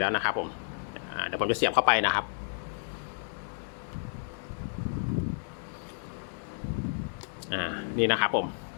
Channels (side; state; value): right; silent; digital silence